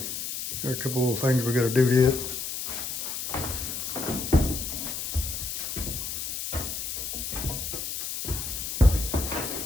got a couple little things we gotta do to it.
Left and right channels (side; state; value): left; noise; hiss, 4 dB below the sound